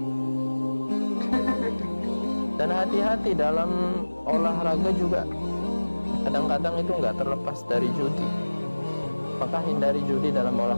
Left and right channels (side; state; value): both; inverted; correlation -1.00